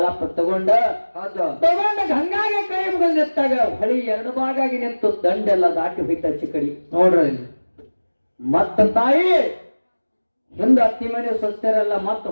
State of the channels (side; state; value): both; inverted; correlation -1.00